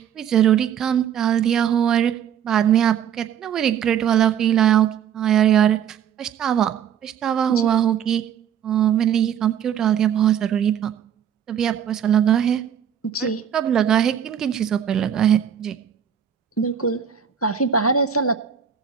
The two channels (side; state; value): left; quieter; 8.8 dB